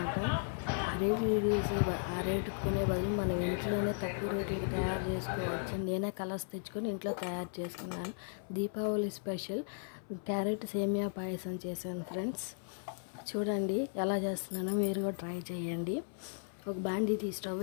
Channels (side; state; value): right; silent; 54 dB below the other